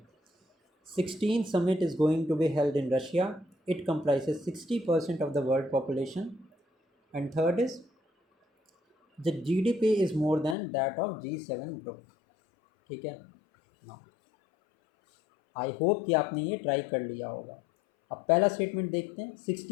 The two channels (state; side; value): drops out; right; at 10.6 s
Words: 16th summit is going to be held in Russia. It comprises 60% of the world population. And third is the GDP is more than that of G7 group. ठीक है ना? आई hope कि आपने ये try कर लिया होगा। अब पहला स्टेटमेंट देखते हैं।